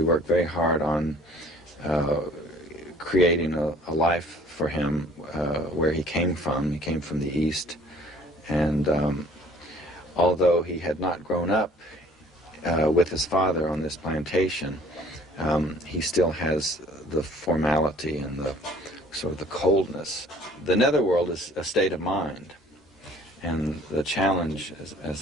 worked very hard on creating a life for him where he came from. He came from the East. And although he had not grown up with his father on this plantation, he still has the formality and the sort of the coldness. The netherworld is a state of mind, and the challenge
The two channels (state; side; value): normal; both; correlation 0.54